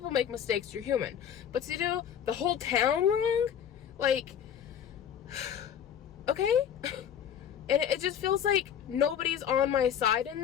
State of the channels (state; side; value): quieter; right; 9.0 dB